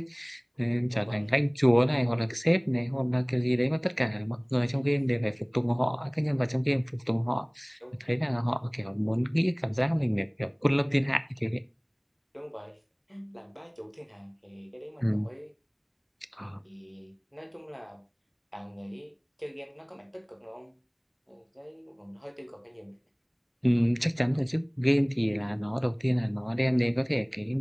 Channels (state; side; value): identical; both; correlation 1.00